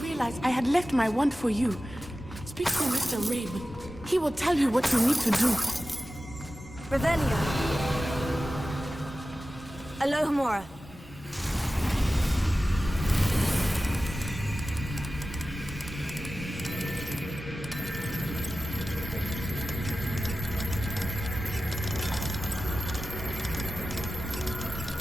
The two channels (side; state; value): both; normal; correlation 0.95